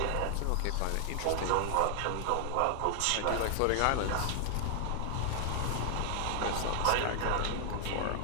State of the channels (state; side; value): different; both; correlation 0.00